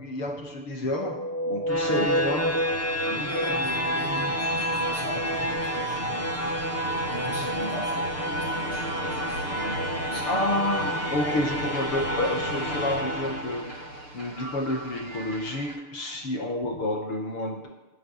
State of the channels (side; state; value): right; late; 6.8 ms